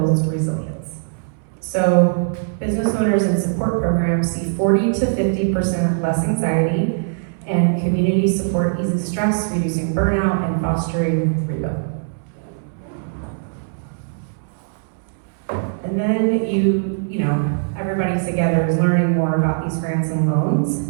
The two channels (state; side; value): silent; left; 65 dB below the other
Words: resilience. So business owners in support programs see 40 to 50% less anxiety, and community support eases stress, reducing burnout and fostering rebuild. And then you know, everybody's together is learning more about these grants and loans